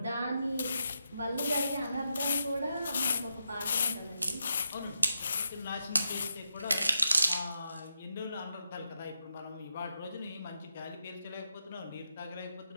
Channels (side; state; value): both; inverted; correlation -0.85